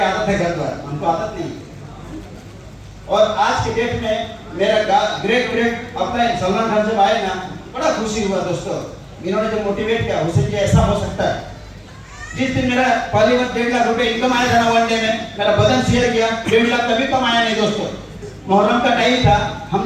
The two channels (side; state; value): both; identical; correlation 1.00